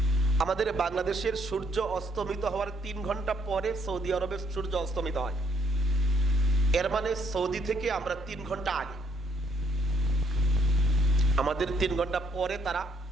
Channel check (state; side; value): normal; both; correlation 0.70